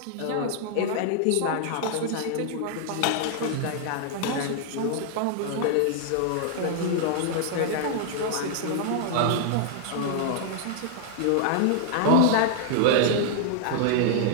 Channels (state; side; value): different; both; correlation 0.00